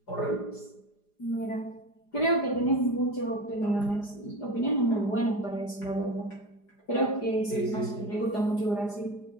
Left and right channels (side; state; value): right; late; 4.9 ms